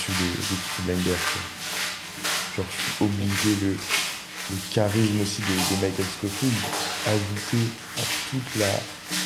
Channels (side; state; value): both; identical; correlation 1.00